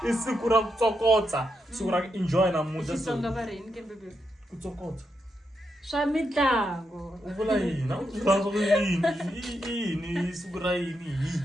i siku ra ku tsokotsa. Siku ra ku enjoy namuntlha. Xitsonga va rini ke bebe? Ku tsokotsa. Swa mitlangu. U vula yini? U vula yini? Siku ra yini?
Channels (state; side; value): normal; both; correlation 0.83